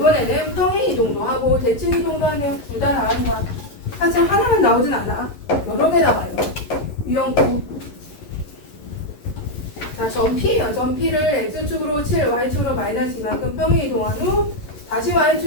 평행 이동도 하고 대칭 이동도 하네요. 둘 다 나오는 거야. 사실 하나만 나오진 않아. 여러 개 나와요. 유형구. 자 점 P를 X축으로 7, Y축으로 마이너스 이만큼 평행 이동한 후 다시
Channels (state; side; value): late; right; 11 ms